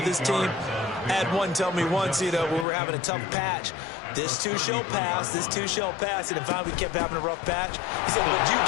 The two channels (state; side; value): drops out; right; at 2.7 s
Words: his team. I had one tell me once, when we were having a tough patch, this too shall pass, this too shall pass, and finally we kept having a rough patch. He said, but you